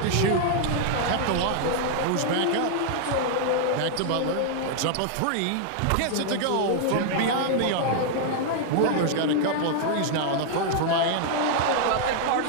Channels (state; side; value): different; both; correlation -0.01